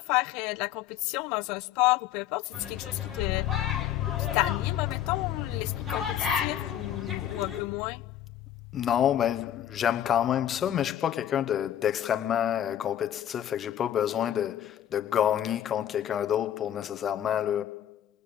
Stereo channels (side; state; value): right; quieter; 11.0 dB